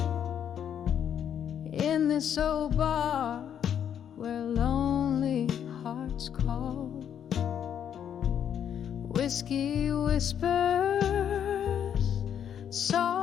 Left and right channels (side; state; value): right; quieter; 9.0 dB